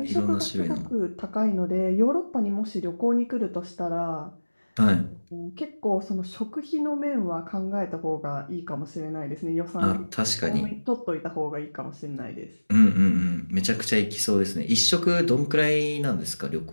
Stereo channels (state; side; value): inverted; both; correlation -1.00